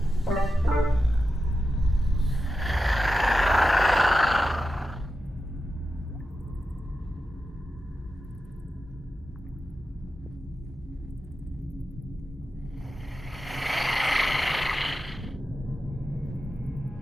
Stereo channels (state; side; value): normal; both; correlation 0.90